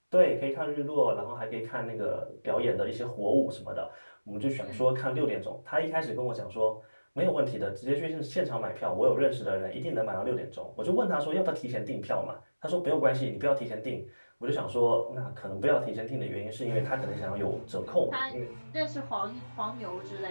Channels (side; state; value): both; inverted; correlation -1.00